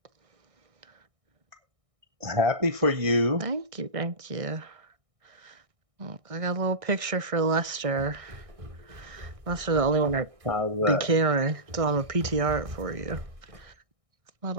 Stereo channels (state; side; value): late; left; 1.6 ms